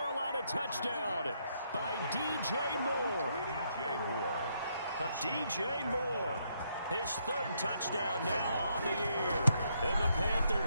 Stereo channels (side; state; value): both; inverted; correlation -0.75